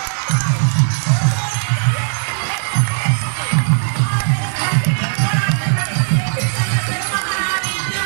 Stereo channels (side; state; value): left; silent; 68 dB below the other